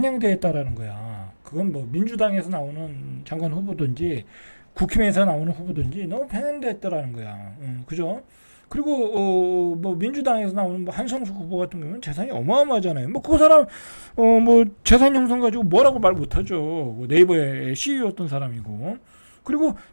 있다라는 거야. 그건 뭐 민주당에서 나오는 장관 후보든지 국힘에서 나오는 후보든지 너무 편향되어 있다라는 거야. 그죠? 그리고 뭐 민주당에서 나오는 뭐 한성수 후보 같은 경우는 재산이 어마어마하잖아요. 뭐 그 사람 뭐 재산 형성 가지고 뭐라고 말 못하죠. 뭐 네이버의 CEO였던 사람이고. 그리고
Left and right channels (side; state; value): both; inverted; correlation -1.00